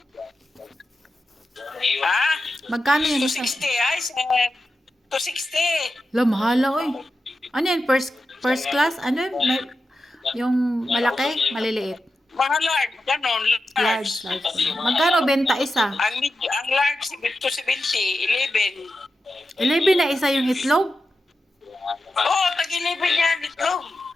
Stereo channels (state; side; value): normal; both; correlation 0.90